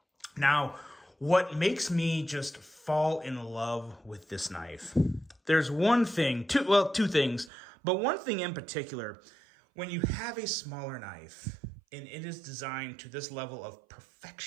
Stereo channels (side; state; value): left; drops out; at 7.5 s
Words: Now, what makes me just fall in love with this knife? There's one thing, two things, but one thing in particular. When you have a smaller knife and it is designed to this level of